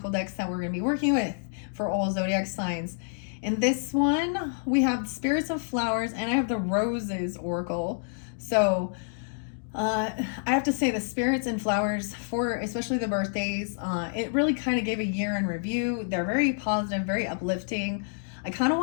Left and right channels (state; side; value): silent; right; digital silence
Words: decks that we're going to be working with for all zodiac signs. In this one, we have Spirits of Flowers, and I have the Roses Oracle. So I have to say the Spirits and Flowers, for especially the birthdays, it really kind of gave a year in review. They're very positive, very uplifting. I kind of